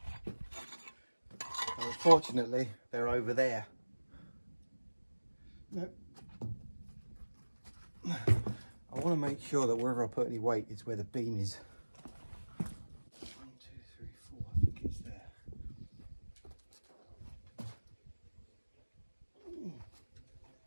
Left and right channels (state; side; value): inverted; both; correlation -1.00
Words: And unfortunately, they're over there. No. I want to make sure that wherever I put any weight is where the beam is. 1, 2, 3, 4, I think it's there.